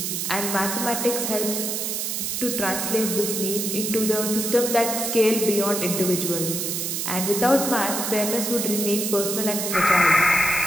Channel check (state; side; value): noise; right; hiss, 2 dB below the sound